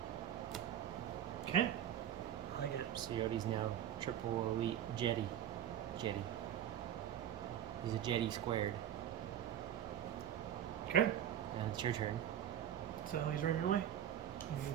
Okay. I like it. So Yoda's now triple elite Jetty. Jetty. He's a Jetty squared. Okay. And it's your turn. So he's running away. You can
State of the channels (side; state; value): left; quieter; 10.5 dB